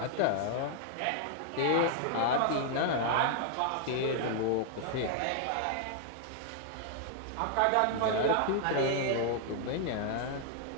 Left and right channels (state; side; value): different; both; correlation 0.00